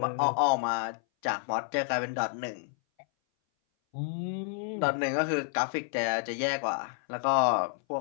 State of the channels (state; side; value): silent; right; 58 dB below the other